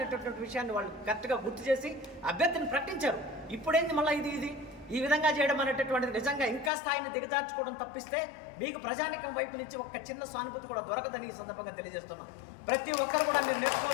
విషయాన్ని వాళ్ళు కరెక్ట్గా గుర్తు చేసి అభ్యర్థిని ప్రకటించారు. ఇప్పుడేంది మళ్ళీ ఇది ఈ విధంగా చేయడం అనేటటువంటిది నిజంగా ఇంకా స్థాయిని దిగజార్చుకోవడం తప్పిస్తే మీకు ప్రజానికం వైపు నుంచి ఒక చిన్న సానుభూతి కూడా దొరకదని ఈ సందర్భంగా తెలియజేస్తున్నాం. ప్రతి ఒక్కరు కూడా మీరు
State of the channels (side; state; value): right; drops out; at 6.7 s